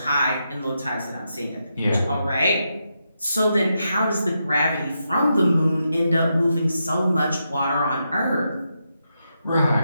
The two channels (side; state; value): both; inverted; correlation -0.84